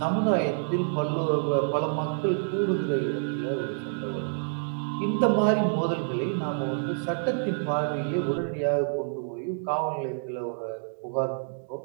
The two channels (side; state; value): left; silent; digital silence